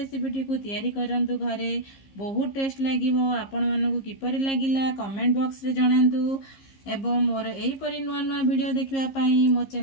को तैयारी करंतु घरे बहुत टेस्ट लागिवो। आपण मानकु किपरि लागिला कमेंट बॉक्स रे जणांतु एवं मोर एहीपरि नुआ नुआ वीडियो देखिवा पाई मो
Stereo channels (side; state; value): right; late; 15 ms